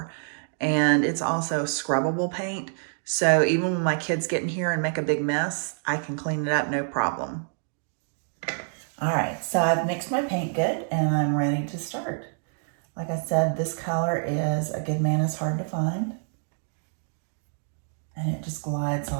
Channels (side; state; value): left; silent; digital silence